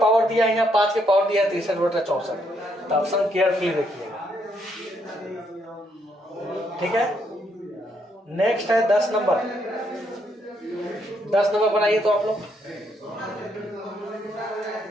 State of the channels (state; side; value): normal; both; correlation 0.74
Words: दिया है, यहाँ 5 के पावर दिया है 63 बटा 64। तो ऑप्शन केयरफुली देखिएगा, ठीक है? नेक्स्ट है 10 नंबर। 10 नंबर बनाइए तो आप लोग।